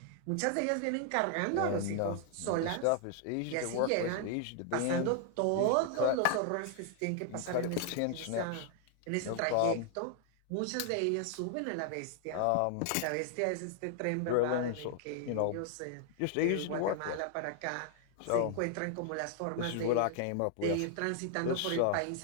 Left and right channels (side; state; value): both; different; correlation 0.00